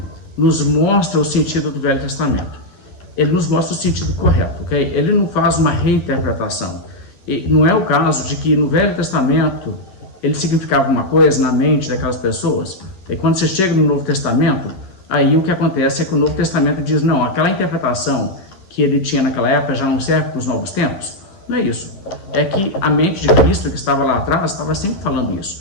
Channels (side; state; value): right; late; 10 ms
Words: nos mostra o sentido do Velho Testamento. Ele nos mostra o sentido correto, ok? Ele não faz uma reinterpretação. E não é o caso de que no Velho Testamento ele significava uma coisa na mente daquelas pessoas, e quando você chega no Novo Testamento, aí o que acontece é que o Novo Testamento diz, não, aquela interpretação que ele tinha naquela época já não serve para os novos tempos. Não é isso. É que a mente de Cristo que estava lá atrás estava sempre falando